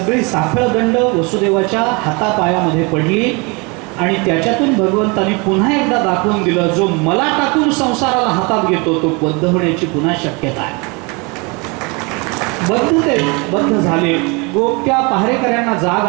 साखळदंड वसुदेवाच्या हातापायामध्ये पडली आणि त्याच्यातून भगवंतांनी पुन्हा एकदा दाखवून दिलं, जो मला टाकून संसाराला हातात घेतो तो बद्ध होण्याची पुन्हा शक्यता आहे. बद्ध झाले. गोप्या पहारेकऱ्यांना जाग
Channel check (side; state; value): left; quieter; 29.2 dB